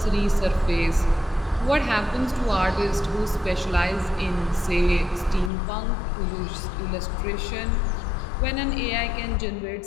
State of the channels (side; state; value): right; drops out; at 5.5 s